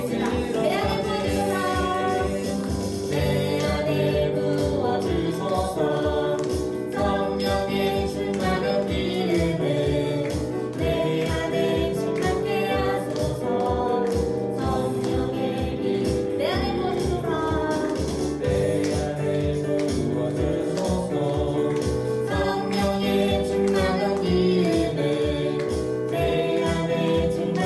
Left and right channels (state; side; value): identical; both; correlation 1.00